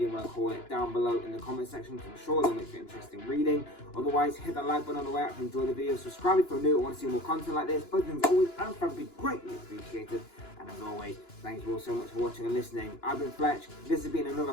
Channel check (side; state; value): right; late; 2.9 ms